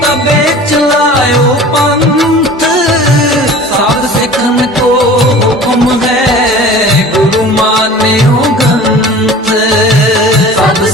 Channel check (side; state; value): both; normal; correlation 0.42